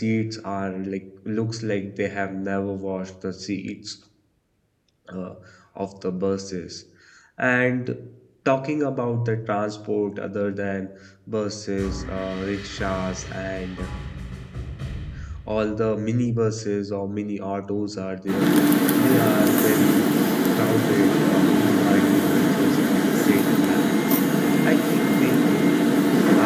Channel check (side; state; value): both; identical; correlation 1.00